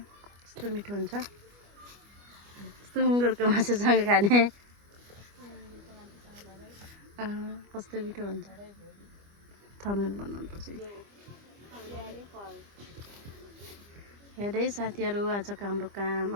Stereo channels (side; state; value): left; late; 25 ms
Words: कस्तो मिठो हुन्छ सुँगुरको मासुसँग खाने कस्तो मिठो हुन्छ थमेल बनाउनुपर्छ हेर्दै साथीहरू आजको हाम्रो काम